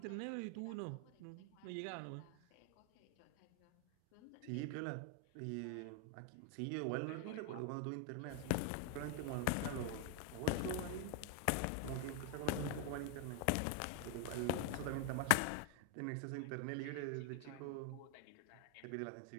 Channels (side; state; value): both; different; correlation 0.01